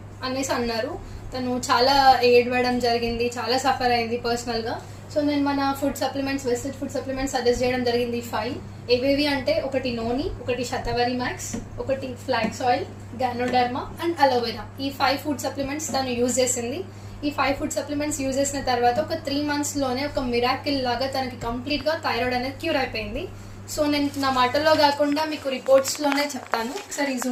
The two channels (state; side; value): identical; both; correlation 1.00